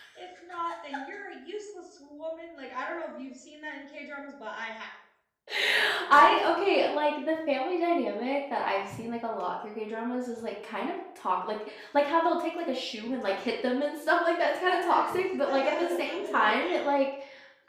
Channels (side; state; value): both; identical; correlation 1.00